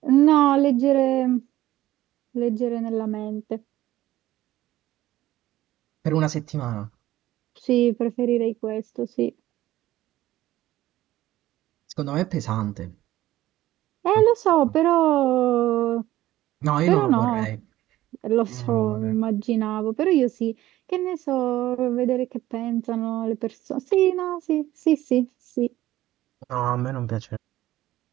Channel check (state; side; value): quieter; left; 15.1 dB